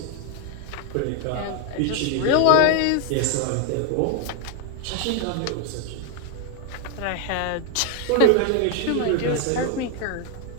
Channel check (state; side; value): different; both; correlation 0.01